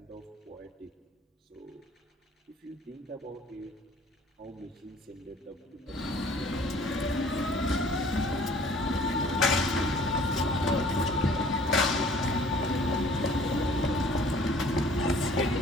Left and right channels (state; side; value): normal; both; correlation 0.53